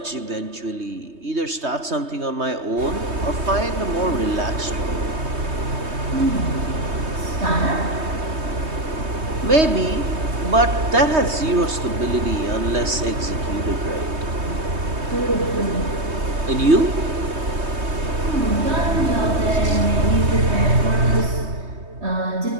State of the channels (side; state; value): left; late; 3.2 ms